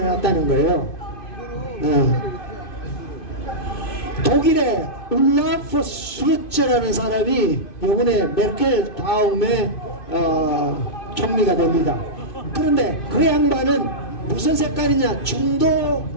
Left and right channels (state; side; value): late; right; 2.5 ms